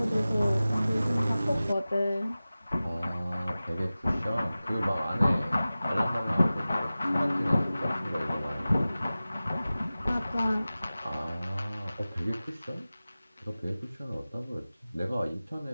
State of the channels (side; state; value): both; inverted; correlation -0.97